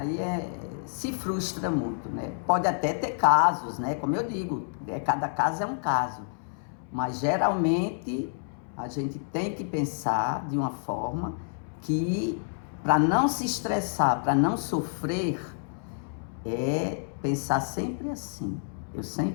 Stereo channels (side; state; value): right; silent; 59 dB below the other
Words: se frustra muito, né? Pode até ter casos, né? Como eu digo, cada caso é um caso, mas geralmente a gente tem que pensar de uma forma que, para não se estressar, para não sofrer, pensar sempre assim. Eu